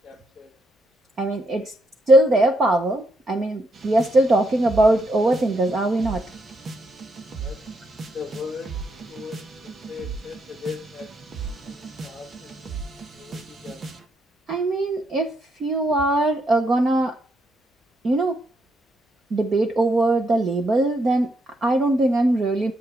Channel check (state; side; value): normal; both; correlation 0.77